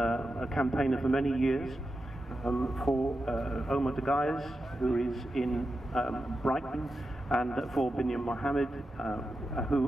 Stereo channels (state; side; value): normal; both; correlation 0.90